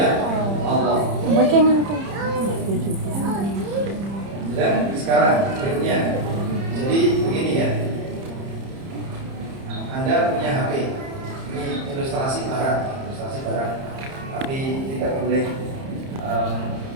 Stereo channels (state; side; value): late; left; 30 ms